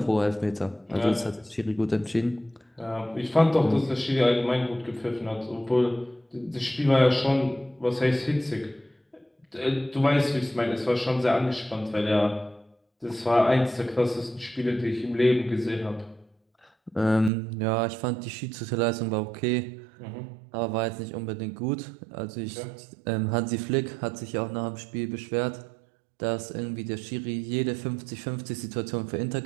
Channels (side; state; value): left; drops out; at 17.3 s